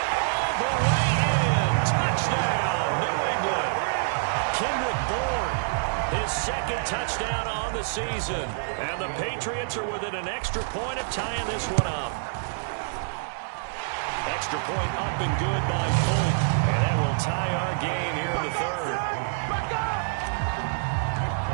all the way in. Touchdown. second touchdown on the season. And the Patriots are within an extra point of tying this one up. Extra point up and good by Folk. And that will tie our game here in the third.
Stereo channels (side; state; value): left; silent; digital silence